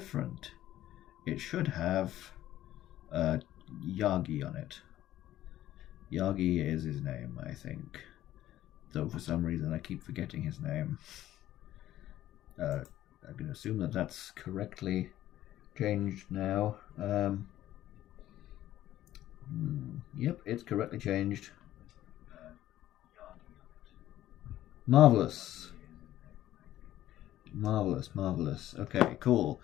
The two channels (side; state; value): right; quieter; 13.6 dB